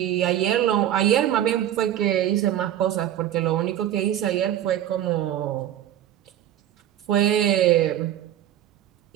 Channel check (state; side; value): quieter; left; 11.5 dB